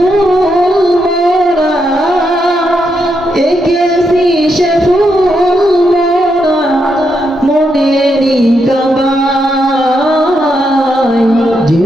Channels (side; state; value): both; normal; correlation 0.81